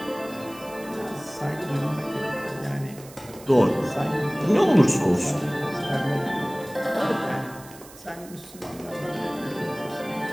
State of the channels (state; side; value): noise; right; hiss, 19 dB below the sound